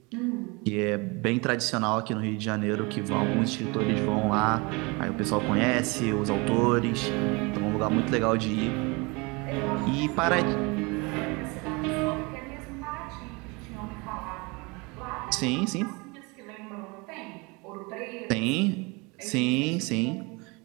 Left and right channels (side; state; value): left; quieter; 27.4 dB